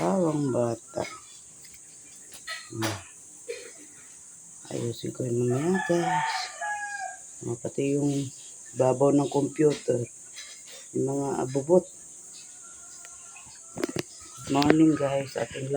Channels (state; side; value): identical; both; correlation 1.00